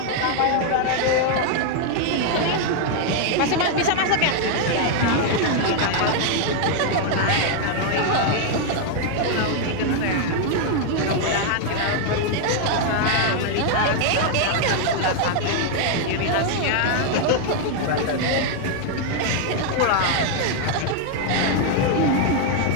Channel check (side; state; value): both; different; correlation 0.00